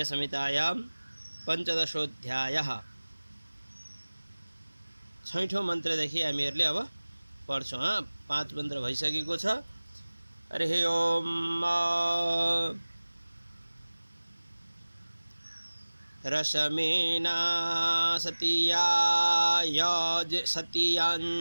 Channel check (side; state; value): both; inverted; correlation -1.00